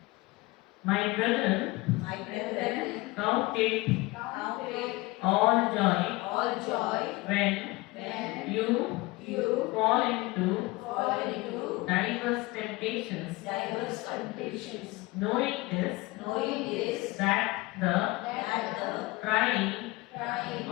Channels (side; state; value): right; quieter; 21.9 dB